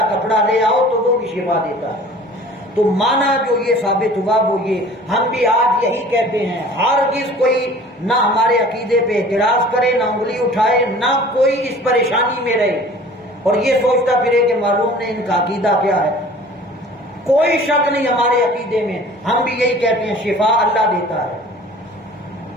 کپڑا لے آؤ تو وہ بھی شفا دیتا ہے، تو مانا جو یہ ثابت ہوا وہ یہ ہم بھی آج یہی کہتے ہیں، ہرگز کوئی نہ ہمارے عقیدے پہ اعتراض کرے، نہ انگلی اٹھائے، نہ کوئی اس پریشانی میں رہے اور یہ سوچتا پھرے کہ معلوم نہیں ان کا عقیدہ کیا ہے، کوئی شک نہیں ہمارے عقیدے میں، ہم بھی یہی کہتے ہیں شفا اللہ دیتا ہے،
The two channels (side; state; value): both; normal; correlation 0.46